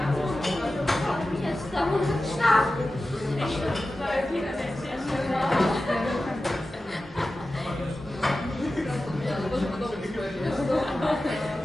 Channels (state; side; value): normal; both; correlation 0.94